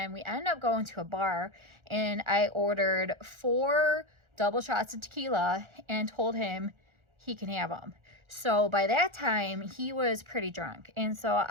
we ended up going to a bar, and I ordered 4 double shots of tequila and told him he can have them. So by that time, he was pretty drunk. And so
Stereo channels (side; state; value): left; late; 1.4 ms